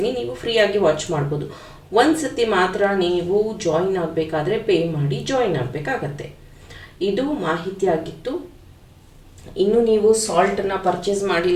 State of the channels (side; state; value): both; identical; correlation 1.00